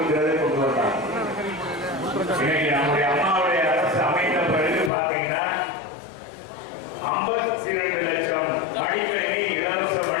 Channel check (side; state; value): right; drops out; at 4.9 s